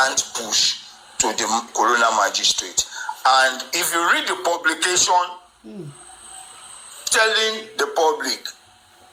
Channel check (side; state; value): both; identical; correlation 1.00